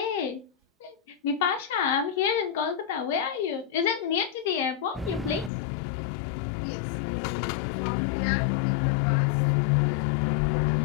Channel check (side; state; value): right; drops out; at 5.5 s